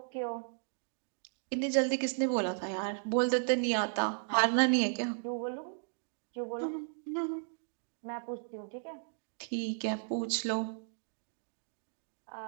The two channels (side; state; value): left; silent; digital silence